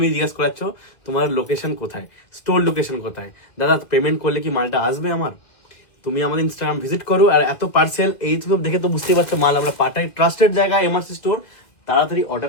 জিজ্ঞাসা করাচ্ছ তোমার লোকেশন কোথায়, স্টোর লোকেশন কোথায়। দাদা পেমেন্ট করলে কি মালটা আসবে আমার? তুমি আমাদের ইনস্টাগ্রাম ভিজিট করো, আর এত পার্সেল এই তো দেখে তো বুঝতেই পারছো মাল আমরা পাঠাই, ট্রাস্টেড জায়গা এমআরসি স্টোর, তাড়াতাড়ি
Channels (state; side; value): late; right; 2.0 ms